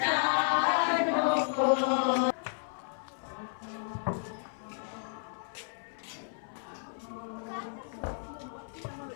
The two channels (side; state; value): right; silent; 56 dB below the other